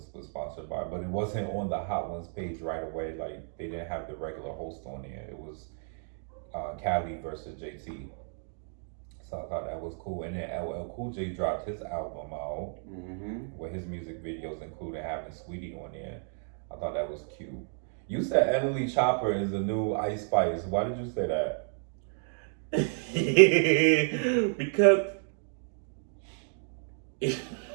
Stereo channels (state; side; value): silent; left; 57 dB below the other